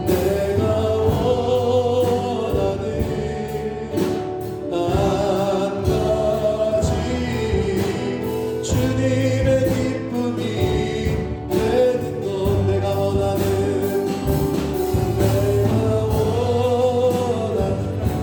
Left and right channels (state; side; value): identical; both; correlation 1.00